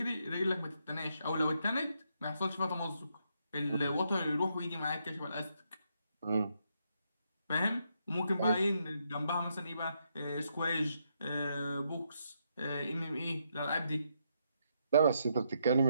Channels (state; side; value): inverted; both; correlation -0.78